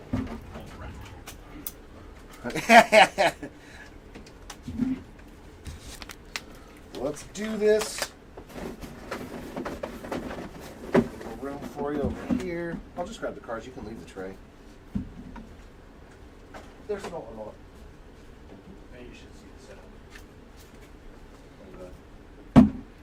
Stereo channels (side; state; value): both; identical; correlation 1.00